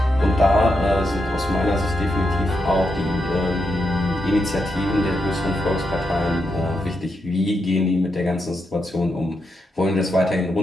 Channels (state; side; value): normal; both; correlation 0.84